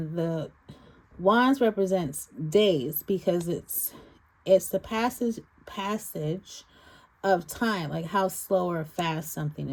the Wands represents days, because it's the passage of time, like how slow or fast something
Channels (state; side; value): identical; both; correlation 1.00